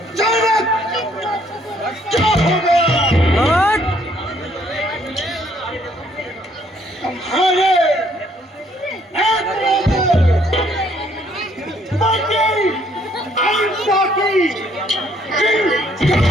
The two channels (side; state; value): both; normal; correlation 0.66